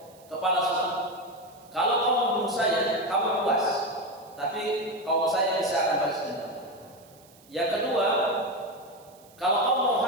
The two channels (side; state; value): right; noise; hiss, 27 dB below the sound